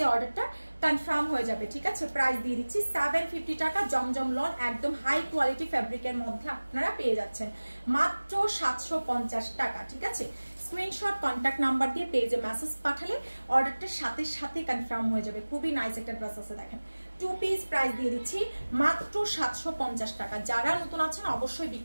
অর্ডারটা কনফার্ম হয়ে যাবে, ঠিক আছে? প্রাইস দিয়ে দিচ্ছি 750 টাকা। জমজম লন একদম হাই কোয়ালিটি ফ্যাব্রিকের মধ্যে আপনারা পেয়ে যাচ্ছেন মাত্র 750 টাকা, ঠিক আছে? স্ক্রিনশট কন্ট্যাক্ট নাম্বার দিয়ে পেজে মেসেজ পাঠালে অর্ডারটা সাথে কনফার্ম হয়ে যাবে। খুবই নাইস একটা ড্রেস আছে দেখেন। 2 পিস প্রাইস দিয়ে দিচ্ছি মাত্র 750 টাকা। যারা নতুন আছেন অবশ্যই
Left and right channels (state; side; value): inverted; both; correlation -1.00